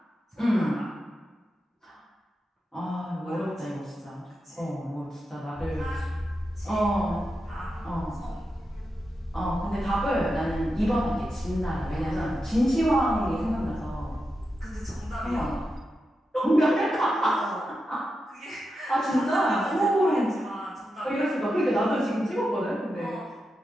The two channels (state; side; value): normal; both; correlation 0.89